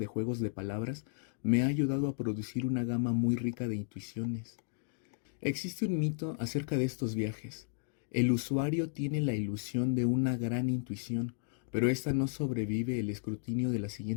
juegos de palabras, me ha ayudado a producir una gama muy rica de intuiciones. Existe un mito acerca de estos viajes. El usuario tiene la ilusión de una gran intuición, pero esta no sobrevive el escrutinio de la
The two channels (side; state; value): right; silent; digital silence